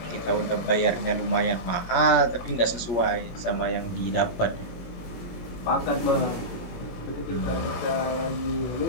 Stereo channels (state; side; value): late; right; 17 ms